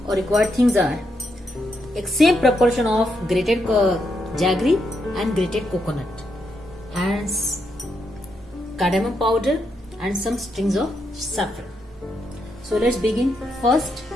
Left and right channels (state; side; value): normal; both; correlation 0.81